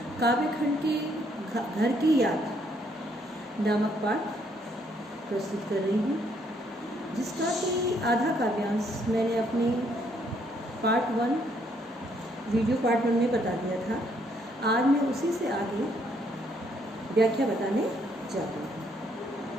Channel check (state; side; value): normal; both; correlation 0.69